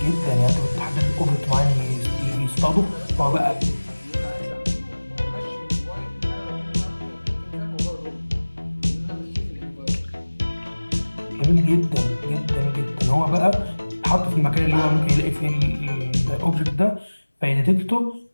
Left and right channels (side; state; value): both; inverted; correlation -1.00